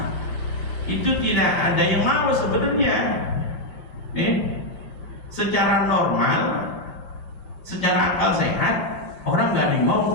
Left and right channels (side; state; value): right; late; 6.4 ms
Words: itu tidak ada yang mau sebenarnya. Secara normal, secara akal sehat, orang nggak ada yang